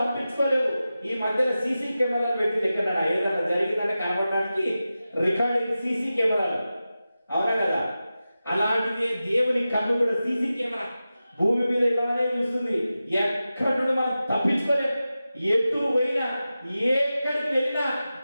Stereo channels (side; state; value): both; inverted; correlation -0.94